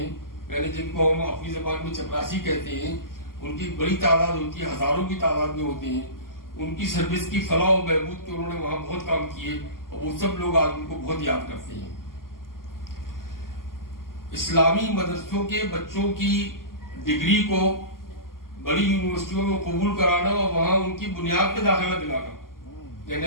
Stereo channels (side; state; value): right; late; 0.91 ms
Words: یعنی جن کو ہم اپنی زبان میں چپراسی کہتے ہیں، ان کی بڑی تعداد ہوتی ہے، ہزاروں کی تعداد میں ہوتے ہیں، ان کی سروس کی فلاح و بہبود کے انہوں نے وہاں بہت کام کیے، اور وہ سب لوگ آج ان کو بہت یاد کرتے ہیں۔ اسلامی مدرسوں کے بچوں کی ڈگری کو بڑی یونیورسٹیوں میں قبول کرانا اور وہاں ان کی بنیاد پہ داخلہ دلانا،